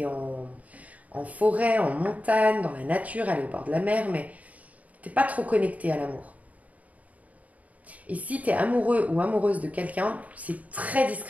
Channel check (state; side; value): late; left; 0.071 ms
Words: en forêt, en montagne, dans la nature, aller au bord de la mer, mais t'es pas trop connecté à l'amour. Et si t'es amoureux ou amoureuse de quelqu'un, c'est très